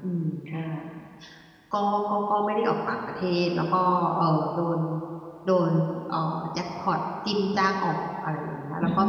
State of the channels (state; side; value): identical; both; correlation 1.00